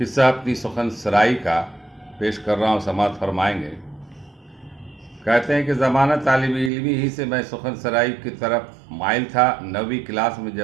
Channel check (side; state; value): left; drops out; at 6.7 s